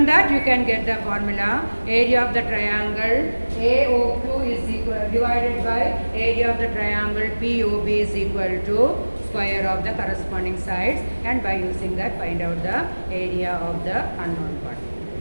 that, you can get the formula. Area of the triangle AOQ is equal divided by area of the triangle POB is equal to square of the corresponding sides, and by using that, find out the area of the unknown part.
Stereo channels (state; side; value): inverted; both; correlation -1.00